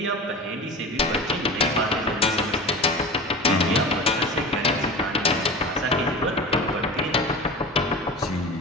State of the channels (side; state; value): both; normal; correlation 0.32